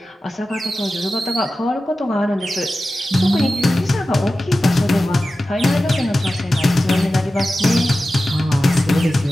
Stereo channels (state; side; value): normal; both; correlation 0.94